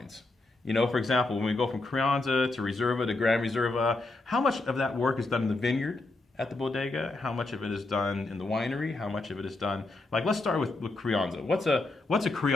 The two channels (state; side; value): quieter; right; 3.1 dB